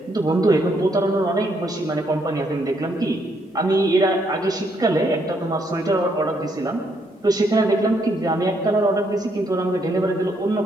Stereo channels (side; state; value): both; normal; correlation 0.73